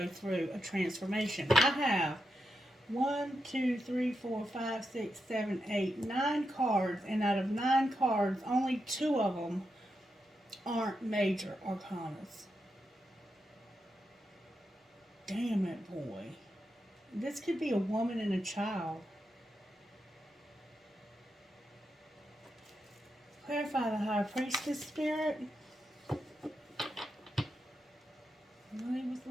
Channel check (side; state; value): both; normal; correlation 0.86